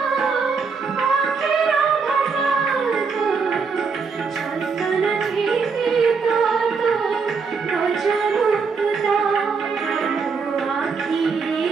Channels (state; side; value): quieter; left; 5.2 dB